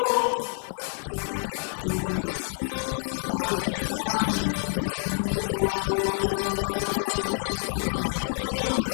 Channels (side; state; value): right; silent; 60 dB below the other